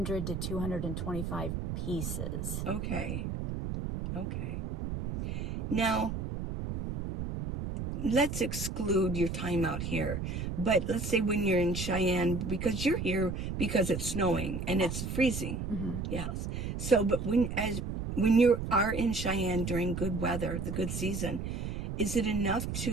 to 225 pieces. Okay. Now, let's exclude your time out here. But let's say when you're in Cheyenne, because you're here because it's snowing and it's freezing. Yes. So, but when you are in Cheyenne during good weather, the good season, is it enough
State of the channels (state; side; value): noise; right; rumble, 4 dB below the sound